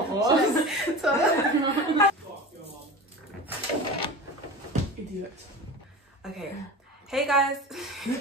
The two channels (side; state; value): both; normal; correlation 0.32